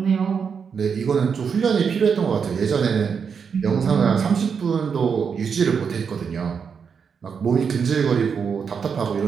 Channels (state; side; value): quieter; left; 6.4 dB